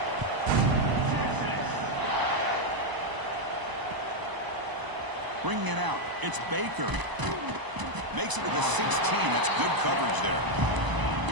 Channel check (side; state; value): left; late; 1.0 ms